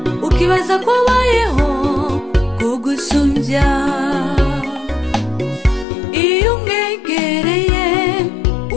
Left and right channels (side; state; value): right; drops out; at 5.9 s